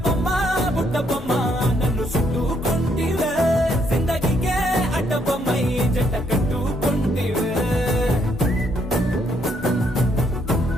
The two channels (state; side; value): normal; both; correlation 0.72